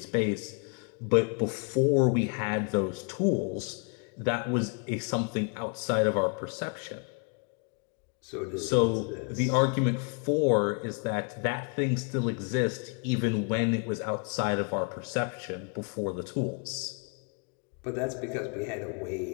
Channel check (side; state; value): right; quieter; 37.8 dB